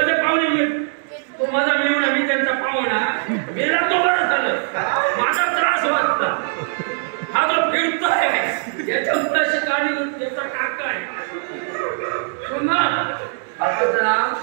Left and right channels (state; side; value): silent; left; digital silence